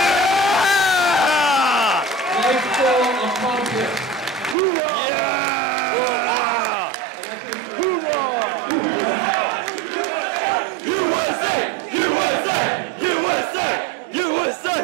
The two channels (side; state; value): left; drops out; at 4.5 s